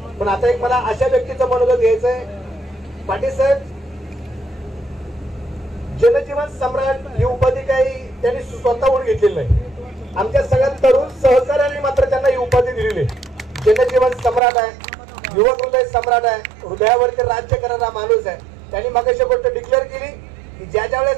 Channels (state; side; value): drops out; left; at 14.4 s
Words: पण आता एक मला अशा व्यक्तीचं मनोगत घ्यायचं आहे. पाटील साहेब, जनजीवन सम्राट ही उपाधी काही त्यांनी स्वतःहून घेतलेली नाही, आमच्या सगळ्या तरुण सहकार्याने मात्र त्यांना ही उपाधी दिलेली आहे. जनजीवन सम्राट आहे, युवक हृदय सम्राट आहे, हृदयावरती राज्य करणारा माणूस आहे. त्यांनी मगाशी गोष्ट डिक्लेअर केली की ज्या